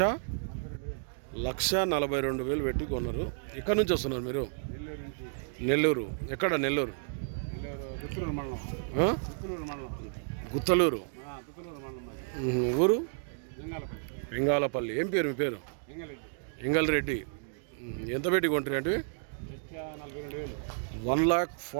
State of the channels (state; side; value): silent; left; digital silence